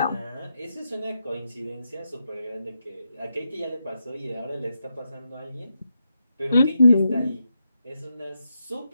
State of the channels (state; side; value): inverted; both; correlation -0.85